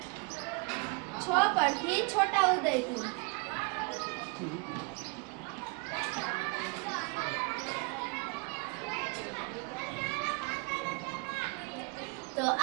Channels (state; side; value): quieter; left; 31.5 dB